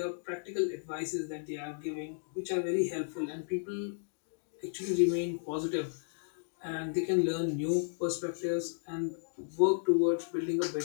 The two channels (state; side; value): silent; right; digital silence